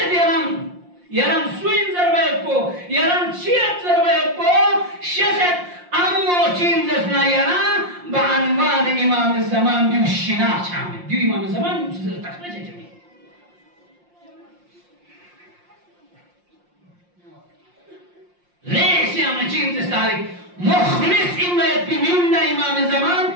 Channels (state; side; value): late; left; 5.7 ms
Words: يرم سوين زربيكو يرم چیت زربيكو شسد امو چین زسنا يرم بعنوان امام الزمان ديو الشناع شامل ديو امام الزمان ديو تخرج جميع ليس يا مچين تستاري مخلص إما يتبميون امام الزمان